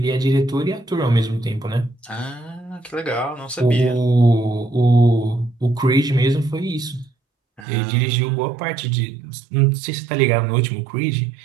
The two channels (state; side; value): drops out; left; at 7.7 s